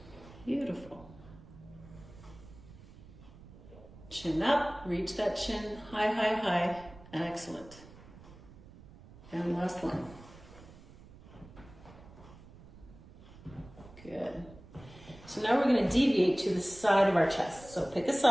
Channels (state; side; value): noise; right; rumble, 20 dB below the sound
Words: Beautiful. Chin up, reach that chin, high. Excellent. And last one. Good. So now we're going to deviate to the side of our chest. So pick a